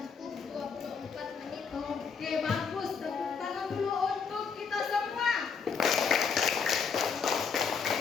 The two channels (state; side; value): quieter; right; 6.0 dB